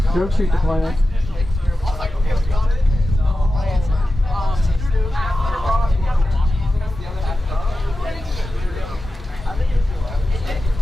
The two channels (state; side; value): normal; both; correlation 0.93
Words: drogue chute deployment.